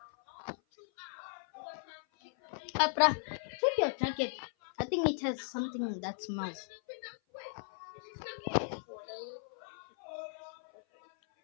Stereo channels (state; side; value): silent; right; 53 dB below the other